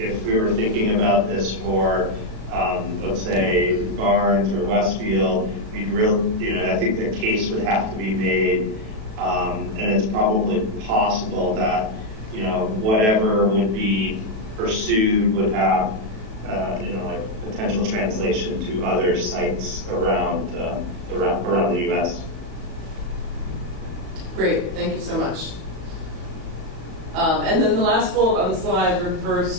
we were thinking about this for, let's say, Barnes or Westfield, we'd really, I think the case would have to be made, and it's probably possible that, whatever would be pursued would have, like potential translation to other sites around the U.S. Great, thank you so much. And then the last bullet on the slide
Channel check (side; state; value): left; late; 37 ms